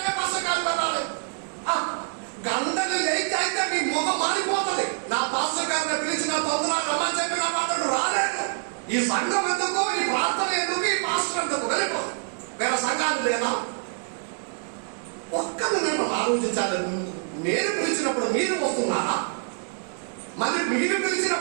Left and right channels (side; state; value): left; silent; 61 dB below the other